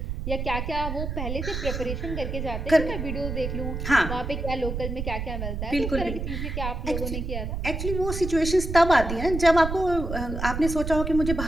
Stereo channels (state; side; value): noise; right; rumble, 4 dB below the sound